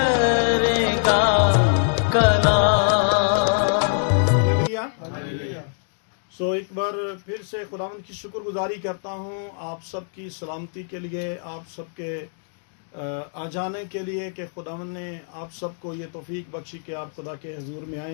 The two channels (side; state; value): right; silent; digital silence